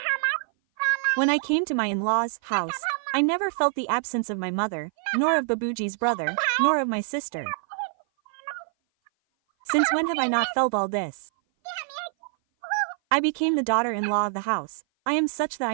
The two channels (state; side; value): silent; left; 57 dB below the other